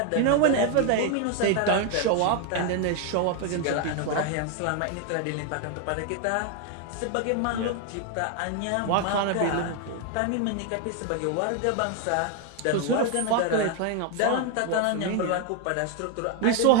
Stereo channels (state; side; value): different; both; correlation 0.01